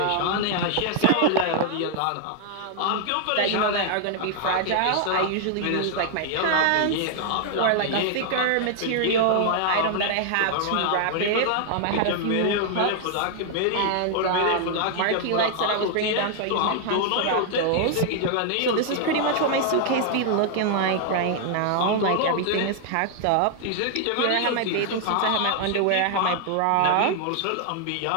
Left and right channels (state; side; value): different; both; correlation 0.00